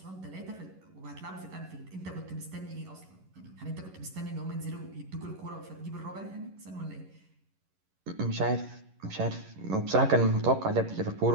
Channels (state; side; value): late; left; 11 ms